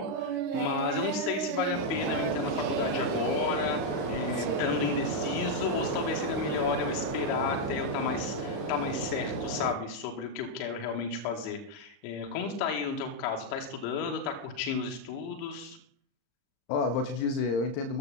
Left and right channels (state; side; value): late; right; 35 ms